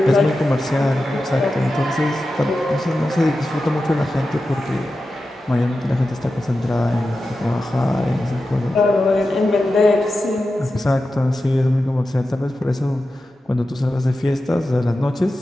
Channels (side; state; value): both; normal; correlation 0.92